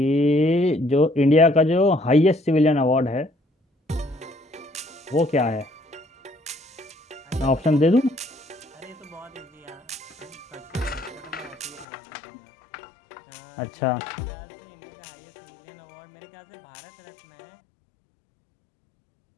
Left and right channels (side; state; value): right; drops out; at 11.9 s